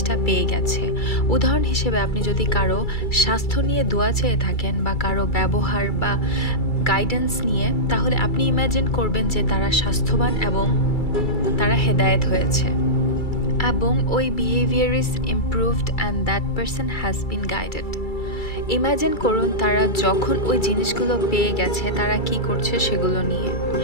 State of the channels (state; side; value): late; right; 2.3 ms